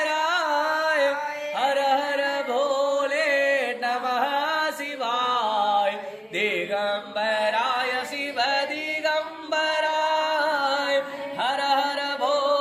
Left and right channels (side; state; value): both; identical; correlation 1.00